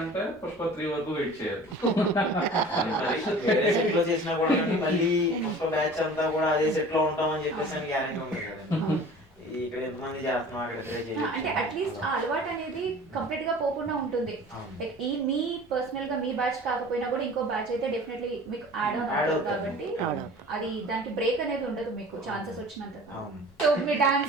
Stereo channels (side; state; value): left; noise; rumble, 28 dB below the sound